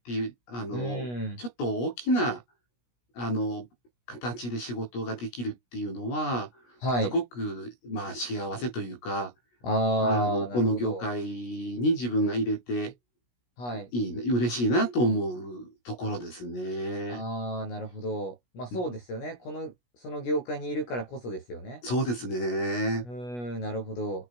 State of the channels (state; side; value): late; right; 16 ms